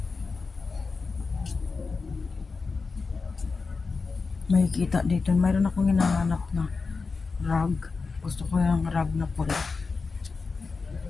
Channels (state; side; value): quieter; right; 4.4 dB